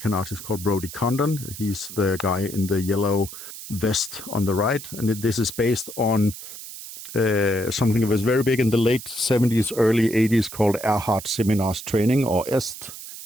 artist called Brody Condon. He's the guy in the yellow vest on the right. And this is based on something that was very big in the late 70s, early 80s called Erhard Seminars Training, or EST.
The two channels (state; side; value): noise; right; hiss, 12 dB below the sound